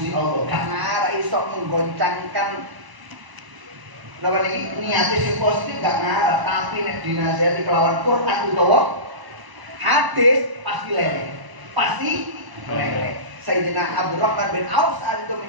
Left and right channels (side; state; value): left; late; 1.0 ms